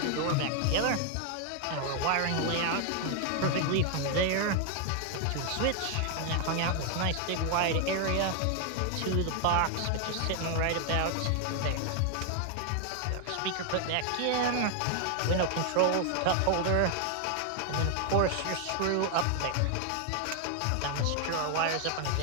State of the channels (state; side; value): different; both; correlation 0.00